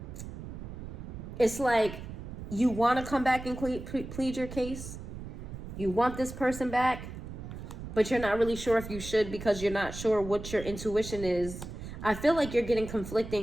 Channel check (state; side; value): noise; right; rumble, 10 dB below the sound